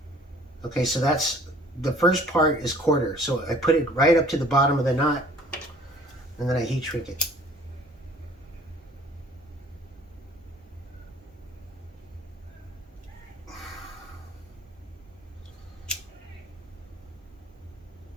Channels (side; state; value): both; normal; correlation 0.52